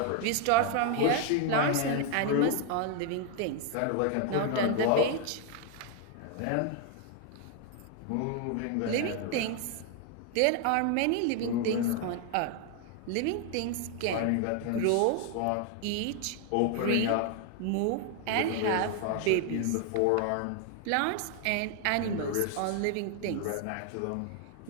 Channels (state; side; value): different; both; correlation 0.01